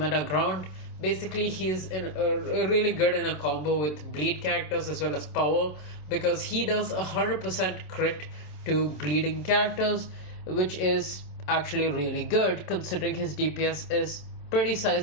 ground. Basically, he's really good in a combo with bleed characters as well as power, because he does 100% crit to bleeding characters, which is actually really good considering his DPS is pretty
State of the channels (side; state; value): right; late; 27 ms